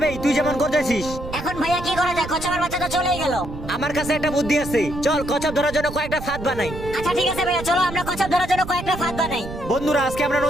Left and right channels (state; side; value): noise; right; rumble, 10 dB below the sound